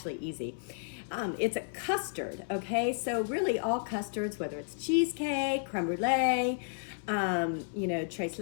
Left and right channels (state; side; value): silent; right; 56 dB below the other